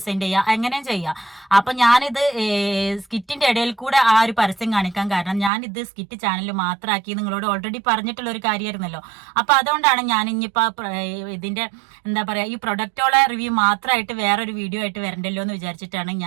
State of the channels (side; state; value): left; drops out; at 5.5 s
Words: ചെയ്യാം, എങ്ങനെയും ചെയ്യാം. അപ്പൊ ഞാനിത് സ്കിറ്റിന്റെ ഇടയിൽ കൂടെ ആ ഒരു പരസ്യം കാണിക്കാൻ കാരണം ഞാനിത് സ്കിറ്റ് ചാനൽ മാത്രമാക്കി നിങ്ങളോട് ഓൾറെഡി പറഞ്ഞിട്ടുള്ള ഒരു കാര്യമായിരുന്നല്ലോ. അപ്പൊ അതുകൊണ്ടാണ് ഞാൻ ഇനിയിപ്പോ ഇതിന്റെ എന്താ പറയാ ഈ പ്രൊഡക്റ്റോളെ റിവ്യൂ മാത്രമായിട്ട് വേറൊരു വീഡിയോ ആയിട്ട് വരണ്ടല്ലോ എന്ന് വിചാരിച്ചിട്ടാണ്